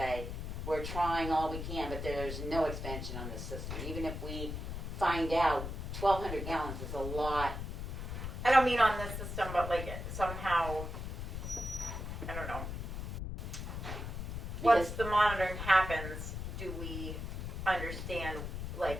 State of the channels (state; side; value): noise; left; rumble, 5 dB below the sound